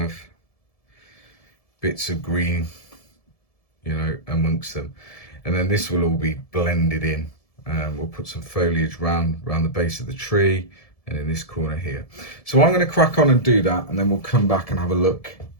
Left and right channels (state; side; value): late; right; 1.7 ms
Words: bits of green, you know, amongst them. And then this will all be blended in. We'll put some foliage round the base of the tree, and in this corner here. So I'm going to crack on and do that, and then we'll come back and have a look